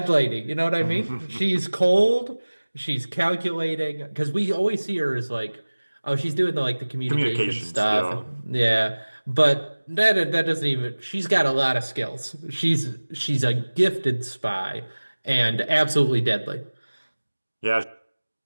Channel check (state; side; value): inverted; both; correlation -1.00